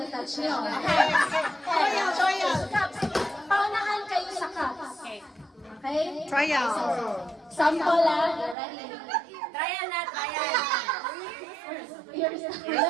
nyo. Okay. Cups. Paunahan kayo sa cups. Okay? Trial. Sample you ready? Trial na, trial. Ears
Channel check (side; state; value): left; drops out; at 8.6 s